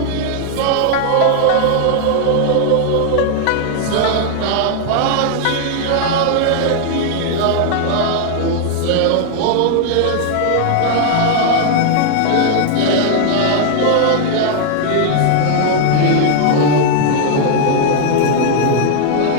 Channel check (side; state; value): both; different; correlation 0.00